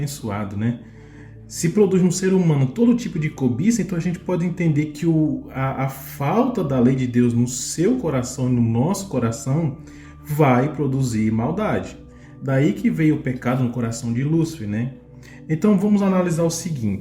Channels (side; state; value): both; identical; correlation 1.00